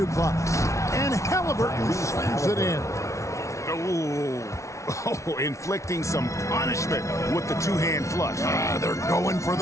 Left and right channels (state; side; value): late; right; 0.14 ms